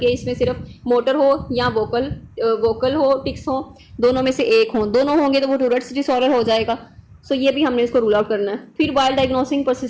इसमें सिर्फ मोटर हो या वोकल हो, टिक्स हो, दोनों में से एक हो। दोनों होंगे तो वो टूरेट्स डिसऑर्डर हो जाएगा। सो ये भी हमने इसको रूल आउट करना है। फिर while diagnosing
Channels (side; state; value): both; identical; correlation 1.00